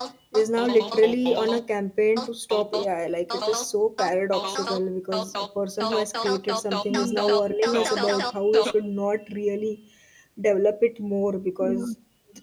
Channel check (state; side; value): identical; both; correlation 1.00